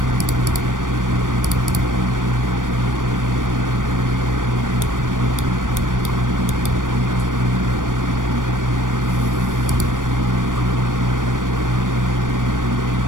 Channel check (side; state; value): left; late; 0.88 ms